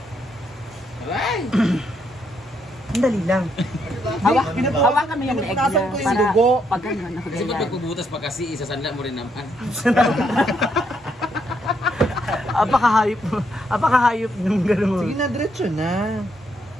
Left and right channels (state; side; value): normal; both; correlation 0.75